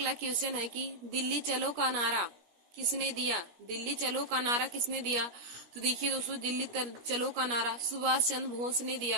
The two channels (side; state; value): left; late; 17 ms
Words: क्वेश्चन है कि दिल्ली चलो का नारा किसने दिया? दिल्ली चलो का नारा किसने दिया? तो देखिए दोस्तों, दिल्ली चलो का नारा सुभाष चंद्र बोस ने